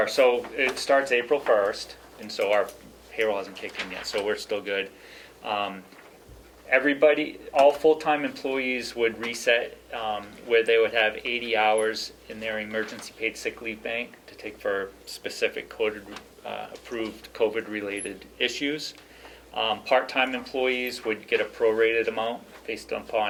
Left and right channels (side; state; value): both; identical; correlation 1.00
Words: so it starts April 1st, and so our payroll hasn't kicked in yet, so we're still good. Everybody, all full-time employees would reset where they would have 80 hours in their emergency paid sick leave bank to take for specific approved COVID-related issues. Part-time employees would get a prorated amount based